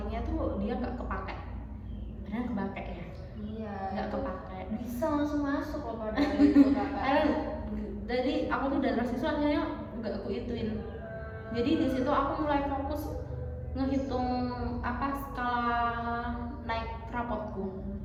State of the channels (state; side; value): identical; both; correlation 1.00